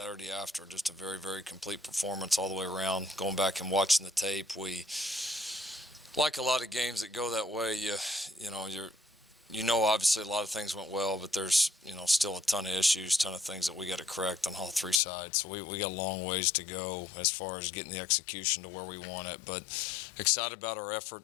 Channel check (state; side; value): drops out; right; at 15.0 s